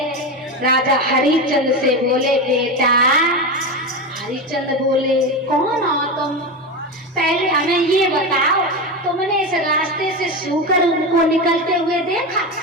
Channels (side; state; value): both; normal; correlation 0.18